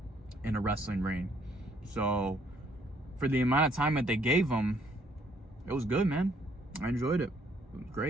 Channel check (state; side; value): normal; both; correlation 0.66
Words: in a wrestling ring. So for the amount of time that they gave him, it was good, man. I enjoyed it. It was